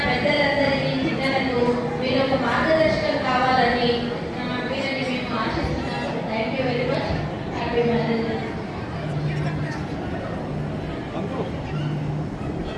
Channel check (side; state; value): both; identical; correlation 1.00